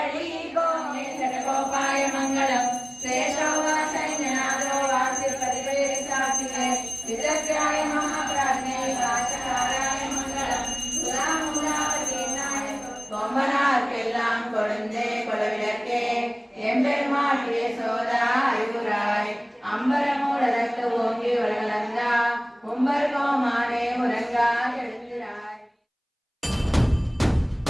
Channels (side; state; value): both; identical; correlation 1.00